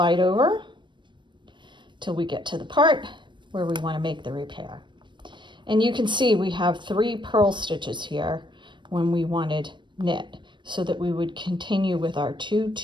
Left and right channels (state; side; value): late; left; 0.23 ms